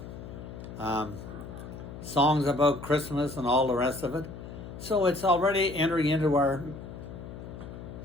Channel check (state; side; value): noise; left; hum, 12 dB below the sound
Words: songs about Christmas and all the rest of it. So it's already entering into our